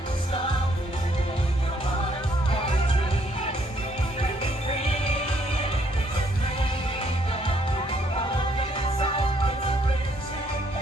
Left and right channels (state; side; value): normal; both; correlation 0.68